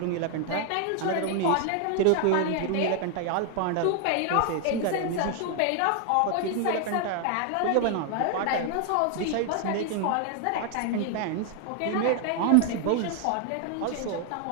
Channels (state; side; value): different; both; correlation 0.00